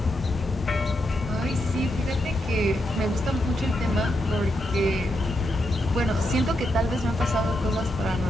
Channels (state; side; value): normal; both; correlation 0.83